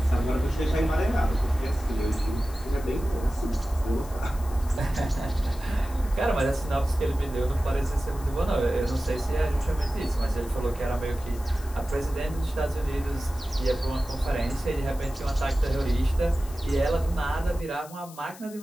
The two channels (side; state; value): left; noise; hiss, 19 dB below the sound